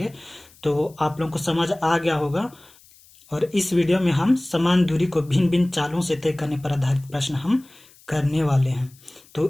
तो आप लोगों को समझ आ गया होगा। और इस वीडियो में हम समान दूरी को भिन्न भिन्न चालों से तय करने पर आधारित प्रश्न हम करने वाले हैं।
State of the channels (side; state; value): left; noise; hiss, 27 dB below the sound